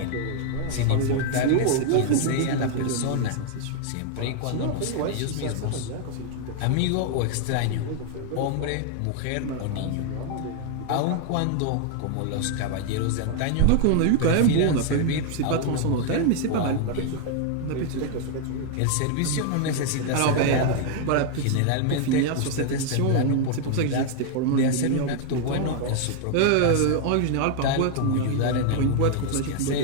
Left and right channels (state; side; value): different; both; correlation 0.00